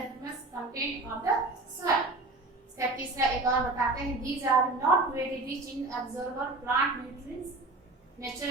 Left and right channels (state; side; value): quieter; left; 3.1 dB